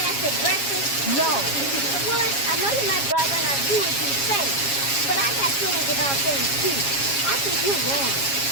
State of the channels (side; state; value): right; late; 7.3 ms